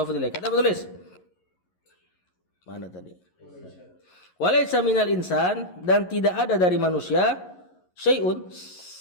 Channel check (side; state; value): right; late; 11 ms